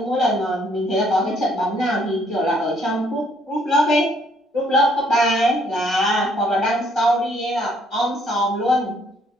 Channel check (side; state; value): both; normal; correlation 0.66